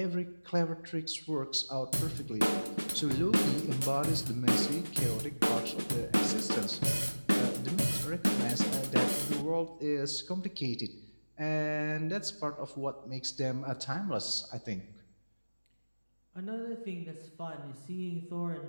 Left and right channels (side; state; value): both; inverted; correlation -1.00